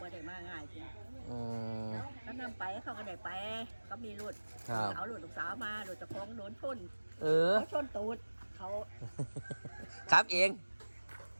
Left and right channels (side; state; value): both; inverted; correlation -1.00